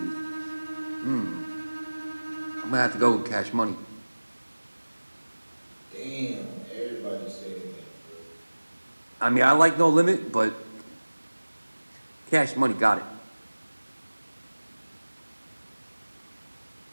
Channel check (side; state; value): both; inverted; correlation -1.00